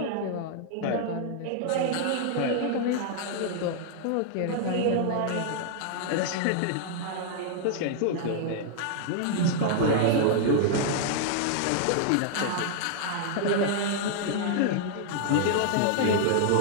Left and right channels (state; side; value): different; both; correlation -0.01